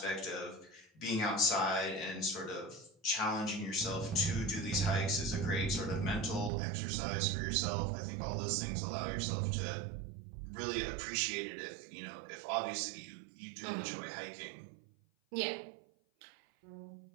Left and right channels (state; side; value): drops out; left; at 6.5 s